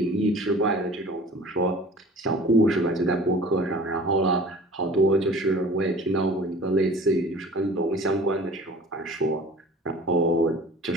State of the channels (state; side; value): normal; both; correlation 0.45